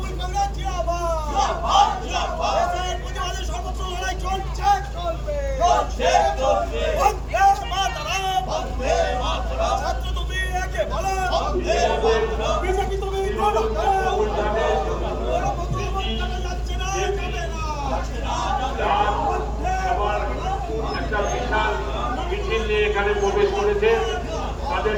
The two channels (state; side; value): identical; both; correlation 1.00